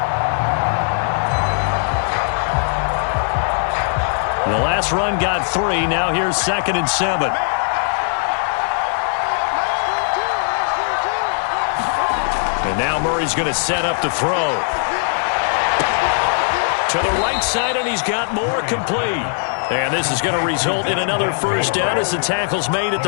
The last run got 3. Now here's 2nd and 7. And now Murray's going to set up to throw. To the right side, and he's got more complete. And this is going to result in another first down as the tackle's made at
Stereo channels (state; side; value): silent; right; digital silence